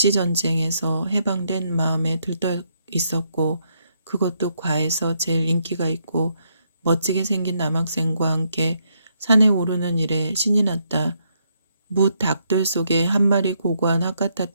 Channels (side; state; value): both; inverted; correlation -0.76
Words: 해방된 마음에 들떠 있었고 그것도 과에서 제일 인기가 있고 멋지게 생긴 남학생과 함께 산에 오르는 일에 신이 났다. 무닭들 속에 한 마리 고고한 학